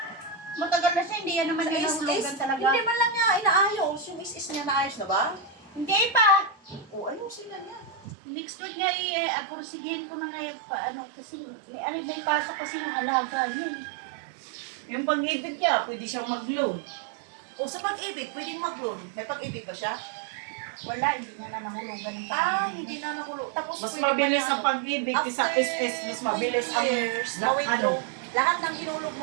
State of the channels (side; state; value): left; drops out; at 8.1 s